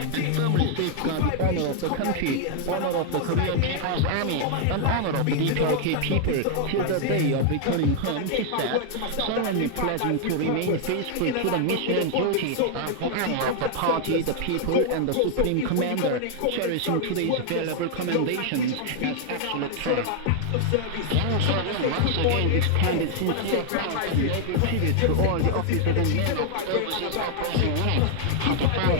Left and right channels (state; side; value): different; both; correlation 0.00